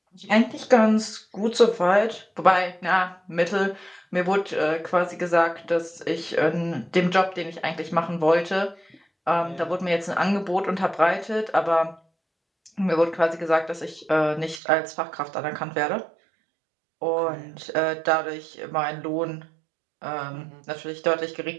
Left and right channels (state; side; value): drops out; left; at 14.6 s